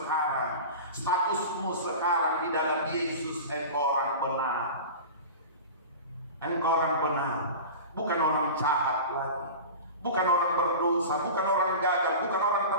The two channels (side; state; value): both; inverted; correlation -0.32